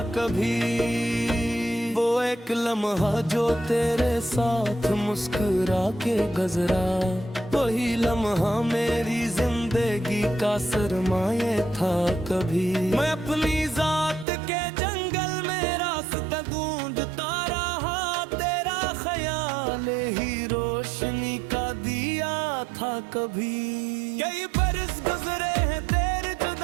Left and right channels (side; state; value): left; drops out; at 14.2 s